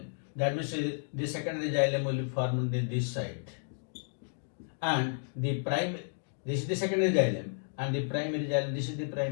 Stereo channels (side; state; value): right; silent; digital silence